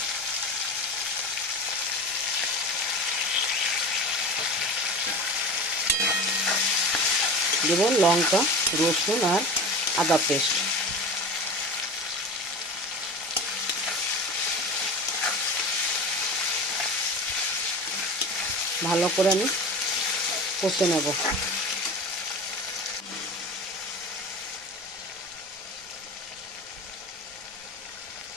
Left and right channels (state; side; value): normal; both; correlation 0.32